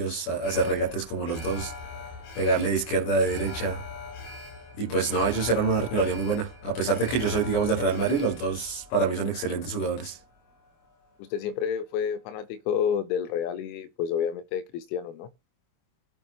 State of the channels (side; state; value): right; late; 24 ms